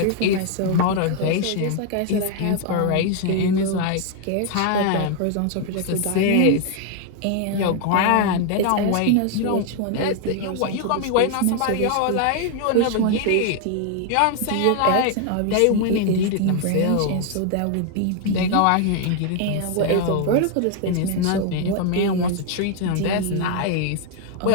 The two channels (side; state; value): both; different; correlation 0.00